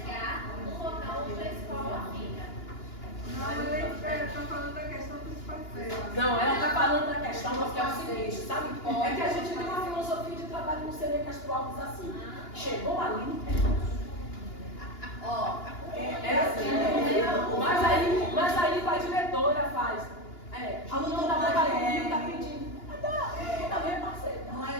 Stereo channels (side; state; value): right; late; 2.9 ms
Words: no local onde a escola fica. Não, eu estou falando da questão dos passeios. Não, ela está falando chama, que é o seguinte, sabe? É que a gente tem uma filosofia de trabalho no CNE Castro Alves assim. Chegou ali, é assim. Mas aí a diretora faz. A união da Boca do Rio está pedindo. Também parceiro. Não